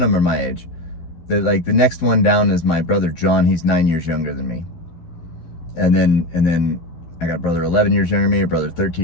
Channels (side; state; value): right; late; 11 ms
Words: of them are my age. The next one down is my brother John. He's 9 years younger than me. And then I got a brother 11 years younger than me, a brother